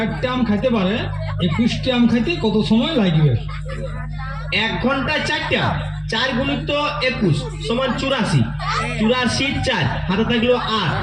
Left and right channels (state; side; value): identical; both; correlation 1.00